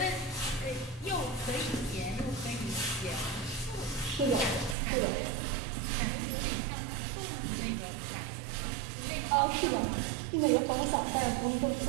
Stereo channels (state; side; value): drops out; left; at 4.8 s